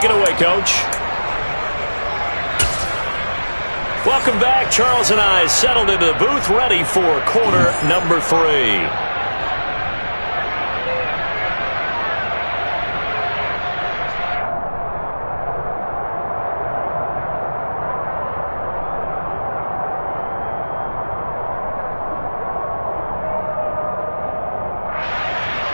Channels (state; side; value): inverted; both; correlation -1.00